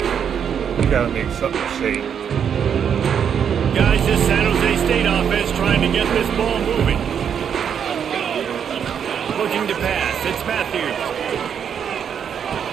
gotta make something safe. Guys, this San Jose State offense trying to get this ball moving. Looking to pass. It's Matthews.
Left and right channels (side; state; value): left; quieter; 7.9 dB